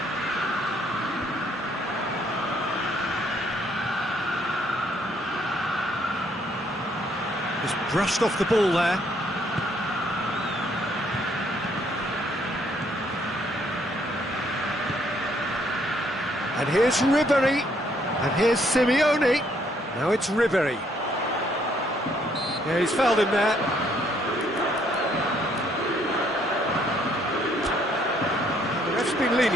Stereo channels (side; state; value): both; normal; correlation 0.68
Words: Just brushed off the ball there. And here's Ribery, and here's Simeone. Now it's Ribery. Yeah, he's fouled him there. The ref's been